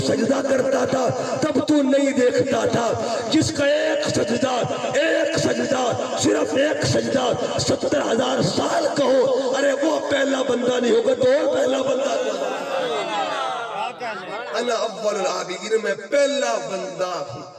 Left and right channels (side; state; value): both; identical; correlation 1.00